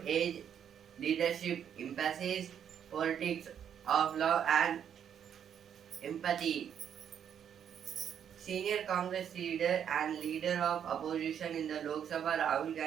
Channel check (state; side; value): quieter; left; 8.7 dB